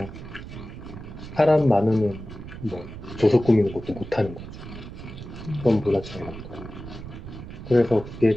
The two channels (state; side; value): noise; right; rumble, 12 dB below the sound